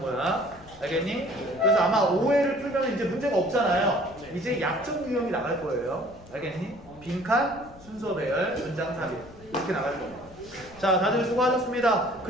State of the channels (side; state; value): left; noise; rumble, 22 dB below the sound